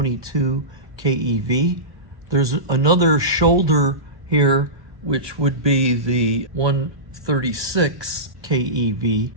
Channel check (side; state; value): left; late; 1.2 ms